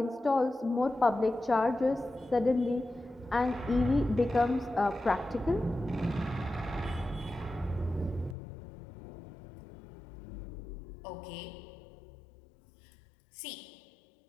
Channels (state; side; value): drops out; right; at 8.3 s